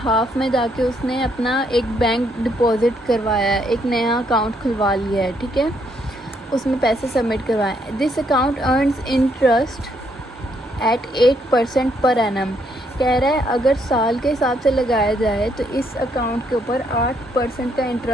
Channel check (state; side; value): normal; both; correlation 0.72